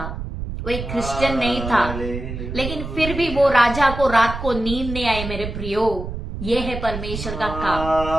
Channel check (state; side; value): noise; right; rumble, 7 dB below the sound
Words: वो एक क्रिश्चियन नहीं था, लेकिन फिर भी वो राजा को रात को नींद नहीं आई। मेरे प्रियो, ये है परमेश्वर का